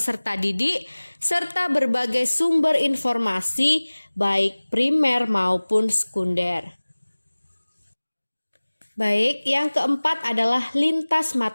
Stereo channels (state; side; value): inverted; both; correlation -1.00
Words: didik serta berbagai sumber informasi baik primer maupun sekunder. Baik, yang keempat adalah lintas